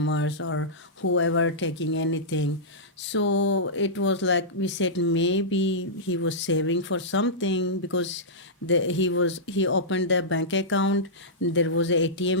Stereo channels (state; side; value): normal; both; correlation -0.13